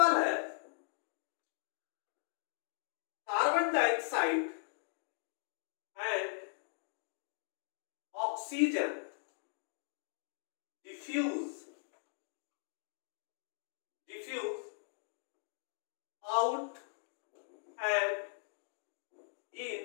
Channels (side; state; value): right; silent; digital silence